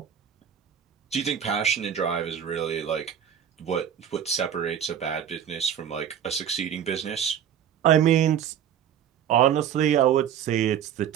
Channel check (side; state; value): left; quieter; 9.1 dB